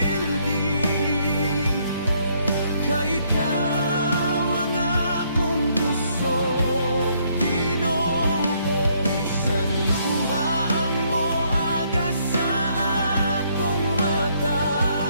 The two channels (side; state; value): both; inverted; correlation -0.69